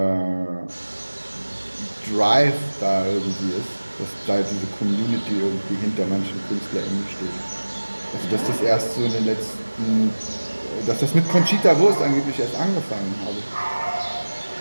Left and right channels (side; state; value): both; inverted; correlation -1.00